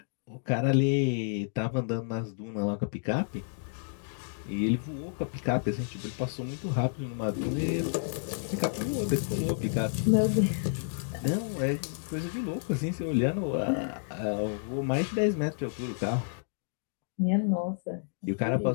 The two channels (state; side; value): silent; right; digital silence